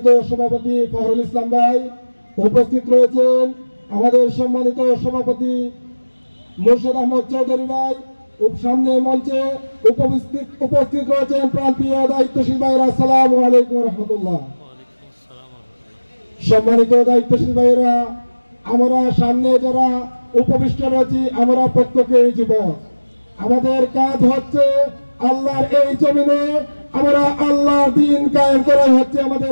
সভাপতি ফখরুল ইসলাম ভাই, উপস্থিত রয়েছেন আমাদের সম্মানিত সভাপতি মুর্শিদ আহমদ চৌধুরী ভাই, সামনে মঞ্চে উপস্থিত রয়েছেন প্রান্তীয় দায়িত্বশীল ভাইরা। আসসালামু আলাইকুম রহমতুল্লাহ। সম্মানিত দায়িত্বশীল ভাইরা, আমরা সামনে যারা উপবিষ্ট রয়েছি আমরা প্রত্যেকেই যুবক। আমাদের কাজ হচ্ছে আল্লাহর এই জমিনে আমরা আল্লাহর দ্বীন কায়েম করা হচ্ছে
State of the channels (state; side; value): inverted; both; correlation -1.00